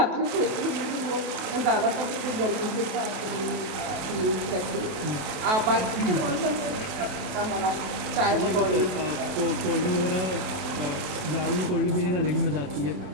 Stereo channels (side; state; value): left; late; 28 ms